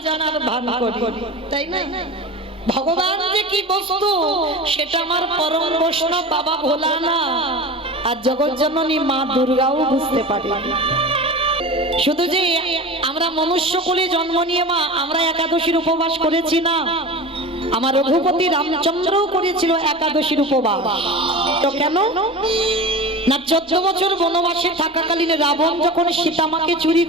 জানার ভান করি, তাই না? ভগবান যে কি বস্তু সেটা আমার পরম বৈষ্ণব বাবা ভোলানাথ আর জগৎজননী মা দুর্গাও বুঝতে পারে। শুধু যে আমরা মনুষ্য কুলে জন্ম নিয়ে মা আমরা একাদশীর উপবাস করেছি না, আমার রঘুপতি রামচন্দ্রও করেছিল একাদশীর উপবাস। তো কেন না, 14 বছর বনবাসে থাকাকালীন রাবণ যখন সীতামাকে চুরি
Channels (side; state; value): both; normal; correlation 0.31